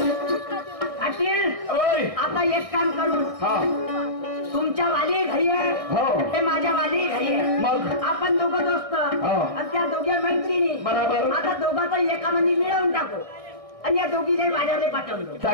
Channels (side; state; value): left; late; 1.6 ms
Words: आता एक काम करून हा तुमच्या वाली घरी आहे हो ते माझ्या वाली घरी आहे मग आपण दोघं दोस्त हो. आणि त्या दोघे मैत्रिणी बरोबर. आता दोघांचं एकामध्ये मिळवून टाकू आणि या दोघीने बाजारला पाठवलं.